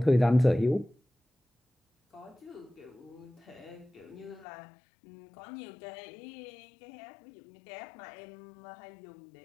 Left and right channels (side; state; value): right; drops out; at 4.5 s